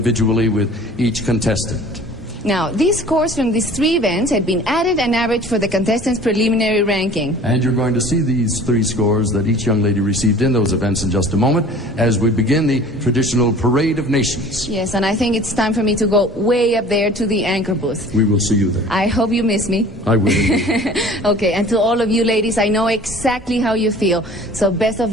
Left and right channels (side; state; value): both; normal; correlation 0.47